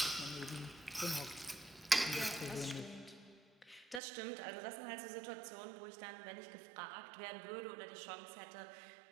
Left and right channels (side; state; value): left; drops out; at 4.0 s